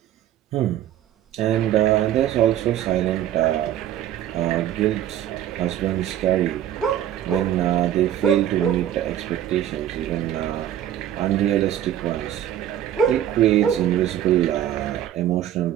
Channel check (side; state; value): left; quieter; 11.4 dB